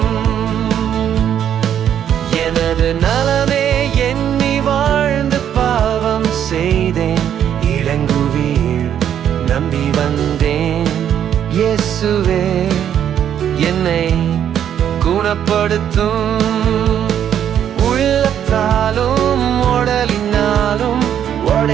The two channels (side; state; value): left; quieter; 9.6 dB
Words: எனது நலமே எண்ணி வாழ்ந்து பாவம் செய்தேன் இளங்குவீர். நம்பி வந்தேன் இயேசுவே என்னை குணப்படுத்தும். உள்ளத்தாலும் உடலினாலும்